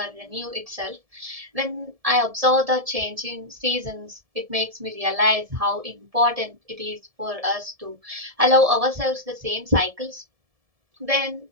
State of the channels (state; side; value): late; left; 1.7 ms